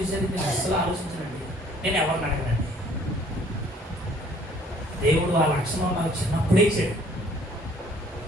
నేను అసలు ఆలోచించనండి. నేను ఎవరిని అడగనండి. దేవుడు ఆ లక్షణం నాకు చిన్నప్పుడే ఇచ్చాడు.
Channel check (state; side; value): normal; both; correlation 0.57